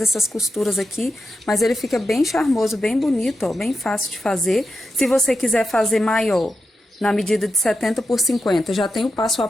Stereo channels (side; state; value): both; normal; correlation 0.88